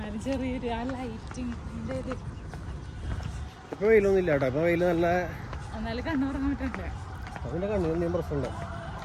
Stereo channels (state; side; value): identical; both; correlation 1.00